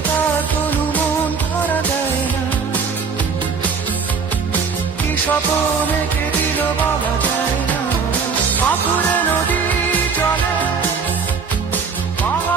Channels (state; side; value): quieter; left; 5.5 dB